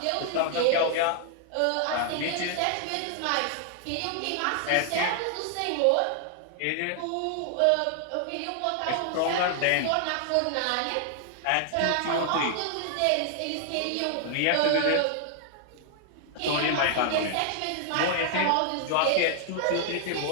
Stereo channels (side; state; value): both; different; correlation 0.00